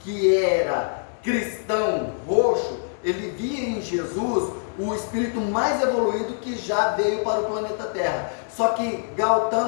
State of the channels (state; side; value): silent; right; 62 dB below the other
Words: que era cristão roxo, ele via em Jesus o espírito mais evoluído que já veio para o planeta Terra. Só que